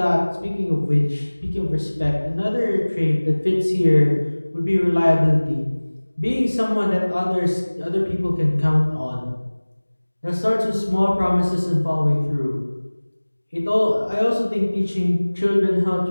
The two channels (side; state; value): both; inverted; correlation -1.00